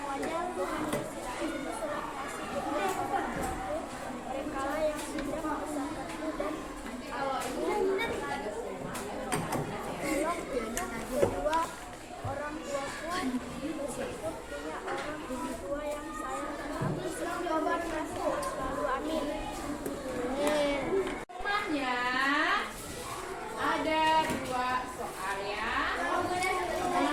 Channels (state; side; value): identical; both; correlation 1.00